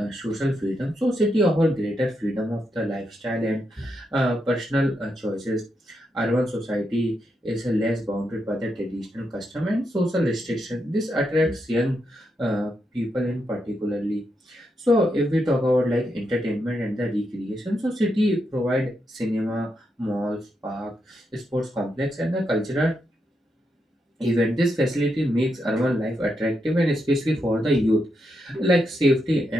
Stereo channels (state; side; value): normal; both; correlation 0.83